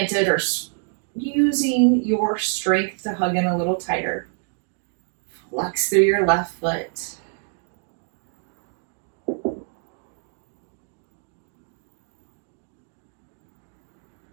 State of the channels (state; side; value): silent; left; 61 dB below the other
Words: or using your strength to hug in a little tighter. Flex through your left foot.